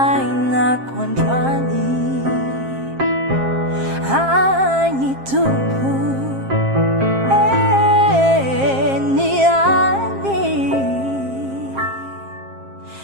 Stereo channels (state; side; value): late; left; 7.5 ms